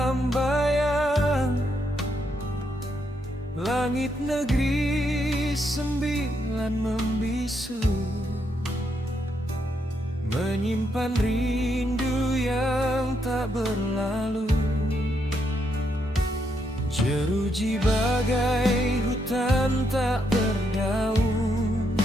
bayang. Langit negeri sembilan membisu, menyimpan rindu yang tak berlalu. Jeruji bagai hutan tak berdaun,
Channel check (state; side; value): normal; both; correlation 0.78